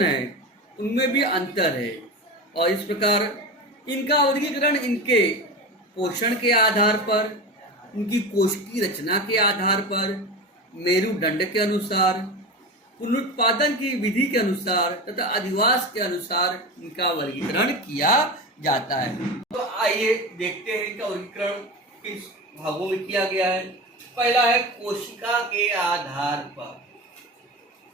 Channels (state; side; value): normal; both; correlation 0.26